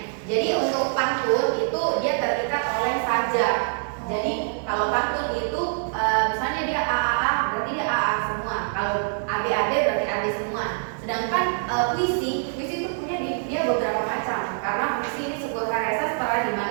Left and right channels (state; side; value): silent; left; digital silence